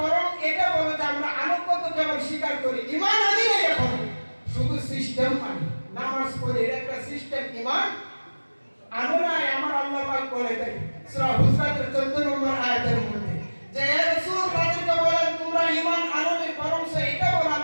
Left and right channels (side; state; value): both; inverted; correlation -1.00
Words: বরং এটা বলো যে আমরা আনুগত্য কেবল স্বীকার করি, ঈমান আনি নাই, এখন শুধু সিস্টেম মানি, নামাজ পড়ি, এটা একটা সিস্টেম, ঈমান আনো নাই। আমার আল্লাহ পাক বলে দেয় সূরা হুজরাতের 14 নম্বর আয়াতের মধ্যে যে হে রাসূল তাদেরকে বলেন তোমরা ঈমান আনোনি, বরং এটা বলো